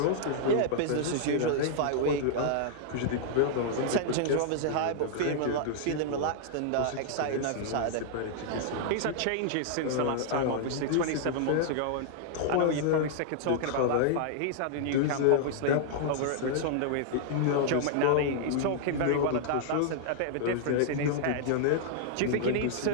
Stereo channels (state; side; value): different; both; correlation -0.01